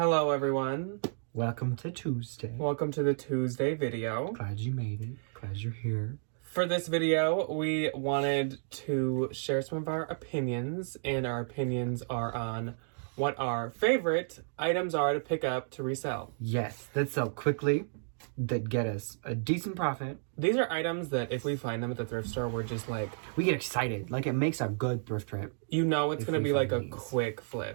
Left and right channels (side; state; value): left; silent; digital silence